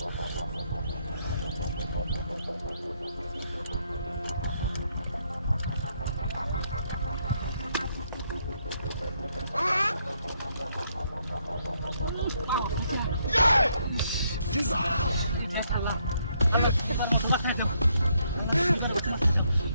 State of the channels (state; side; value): inverted; both; correlation -0.73